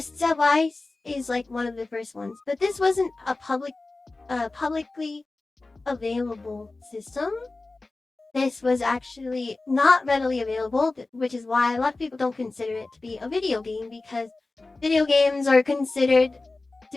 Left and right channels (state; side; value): quieter; right; 3.3 dB